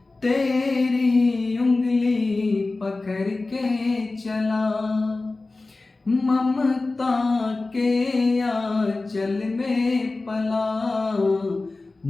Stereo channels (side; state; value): right; quieter; 3.4 dB